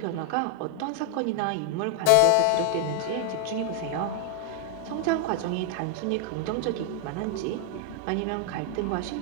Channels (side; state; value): both; different; correlation 0.00